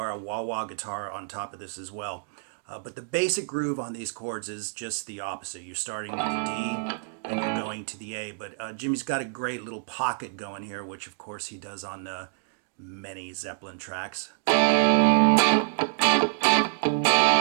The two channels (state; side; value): silent; left; digital silence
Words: on top of this as well. But the basic groove on these chords is just the opposite. You're starting with the D, and you're going to the A. But Jimmy's got a great little pocket going here, which of course he does on many Zeppelin tracks.